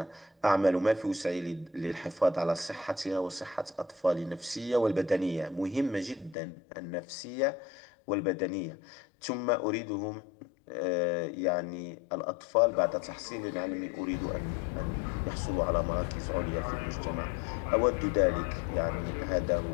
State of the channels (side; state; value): right; drops out; at 6.4 s